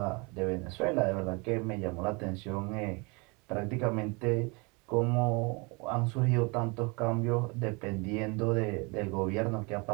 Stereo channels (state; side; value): quieter; left; 29.4 dB